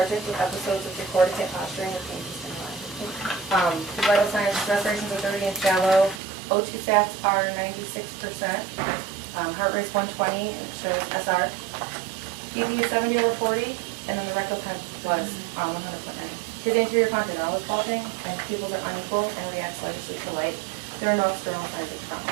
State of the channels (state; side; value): drops out; left; at 6.2 s